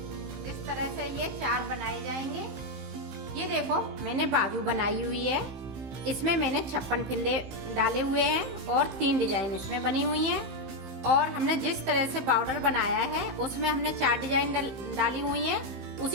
इस तरह से ये 4 बनाए जाएंगे। ये देखो मैंने बाजू बनाई हुई है। इसमें मैंने 56 फिंदे डाले हुए हैं और 3 डिजाइन इसमें बनी हुई हैं। और हमने जिस तरह से बॉर्डर बनाया है उसमें हमने 4 डिजाइन डाली हुई हैं।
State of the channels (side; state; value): left; late; 15 ms